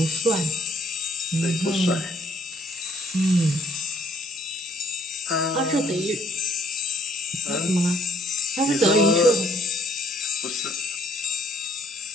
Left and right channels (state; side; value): normal; both; correlation 0.65